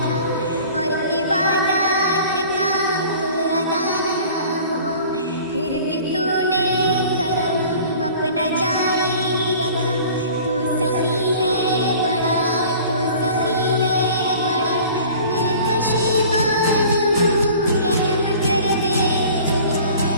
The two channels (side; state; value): both; inverted; correlation -0.45